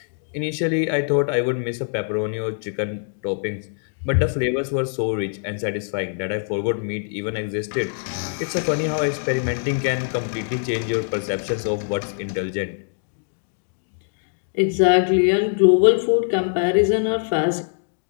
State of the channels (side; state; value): right; silent; digital silence